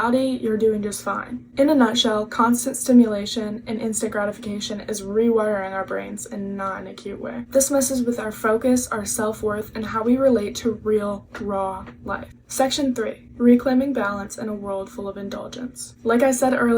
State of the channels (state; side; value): identical; both; correlation 1.00